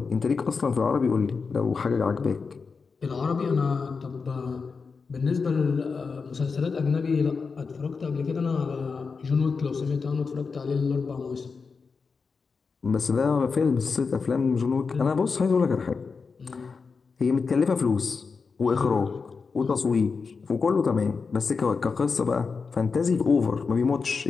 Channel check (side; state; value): right; quieter; 5.0 dB